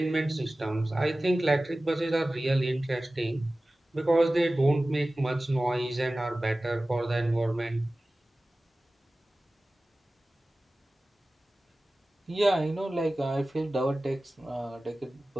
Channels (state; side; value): normal; both; correlation 0.97